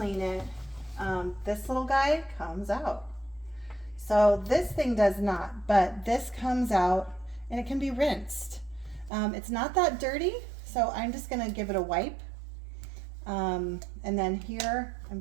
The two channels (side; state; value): left; drops out; at 9.1 s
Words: it. This little guy comes out. So this thing does not, but this comes out and it can be rinsed. It's not that dirty, so I'm just gonna give it a wipe. And then here, I'm